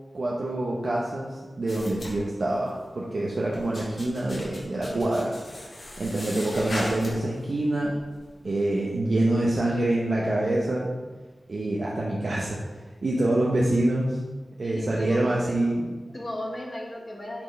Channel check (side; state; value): both; normal; correlation 0.94